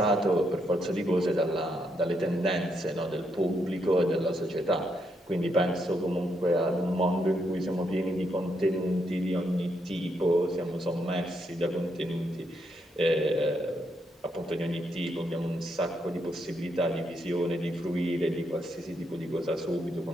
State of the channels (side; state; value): both; normal; correlation 0.78